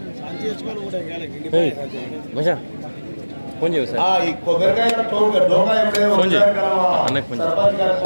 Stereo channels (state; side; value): inverted; both; correlation -1.00